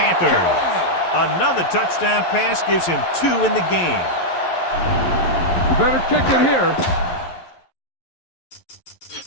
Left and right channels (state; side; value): late; right; 11 ms